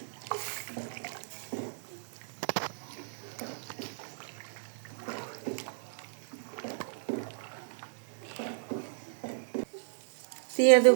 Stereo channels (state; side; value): silent; left; digital silence